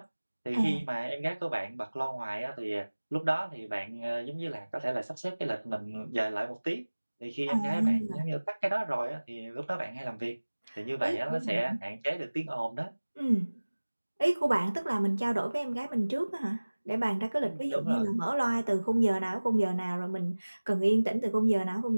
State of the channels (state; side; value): inverted; both; correlation -1.00